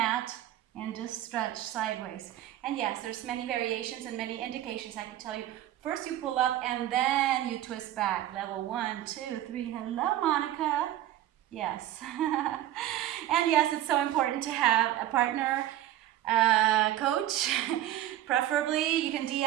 and just stretch sideways. And yes, there's many variations and many indications I can tell you. First you pull up and then you twist back. Level 1, 2, 3. Hello, Monica. Yes. And yes, it's so important to have a partner, coach. Preferably, you can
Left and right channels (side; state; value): left; quieter; 13.3 dB